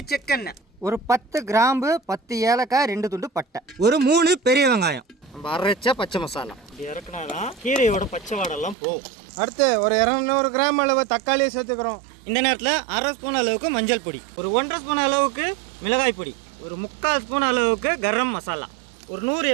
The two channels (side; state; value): left; drops out; at 8.8 s